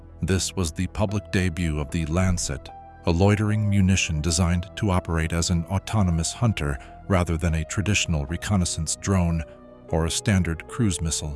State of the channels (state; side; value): identical; both; correlation 1.00